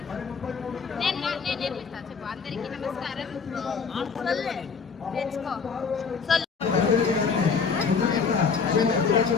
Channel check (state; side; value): quieter; right; 5.6 dB